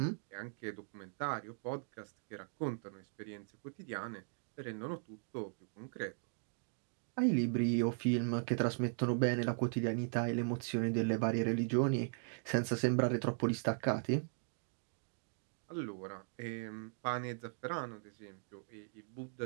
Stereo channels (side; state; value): left; silent; digital silence